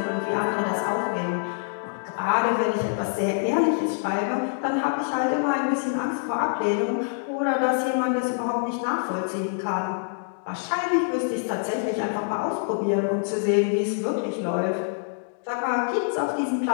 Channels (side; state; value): right; silent; digital silence